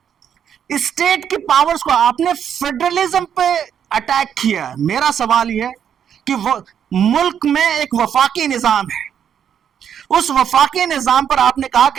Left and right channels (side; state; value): left; quieter; 8.6 dB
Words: اسٹیٹ کی پاورز کو آپ نے فیڈرلزم پہ اٹیک کیا. میرا سوال یہ ہے کہ ملک میں ایک وفاقی نظام ہے، اس وفاقی نظام پر آپ نے کہا